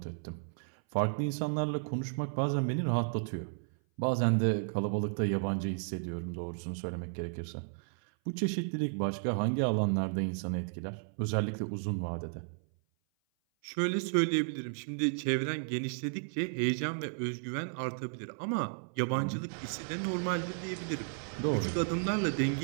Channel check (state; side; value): silent; left; 55 dB below the other